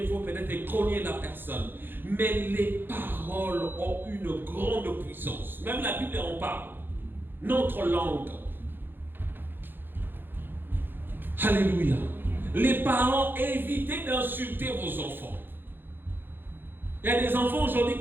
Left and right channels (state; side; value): late; left; 0.098 ms